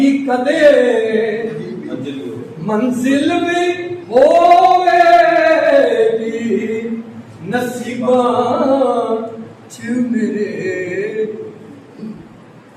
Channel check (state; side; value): identical; both; correlation 1.00